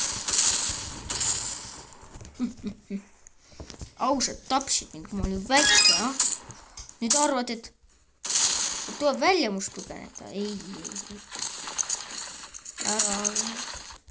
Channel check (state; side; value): identical; both; correlation 1.00